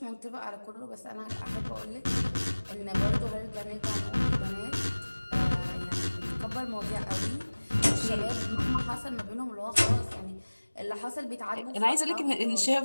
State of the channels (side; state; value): both; inverted; correlation -1.00